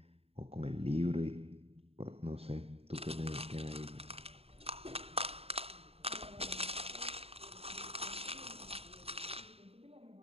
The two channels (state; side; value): late; left; 0.29 ms